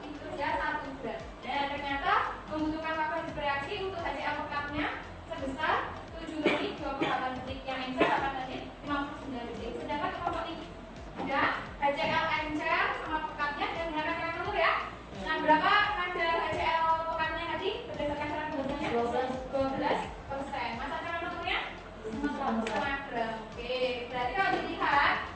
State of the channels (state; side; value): identical; both; correlation 1.00